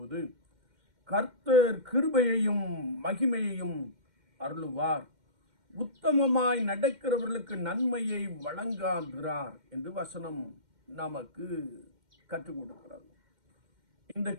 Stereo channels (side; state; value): left; late; 2.1 ms